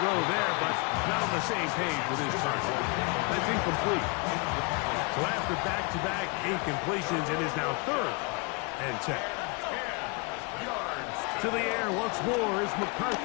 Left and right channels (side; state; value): right; quieter; 31.0 dB